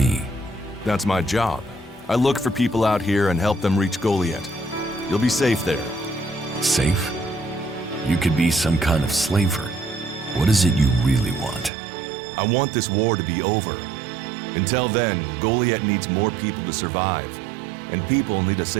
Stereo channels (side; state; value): left; drops out; at 11.7 s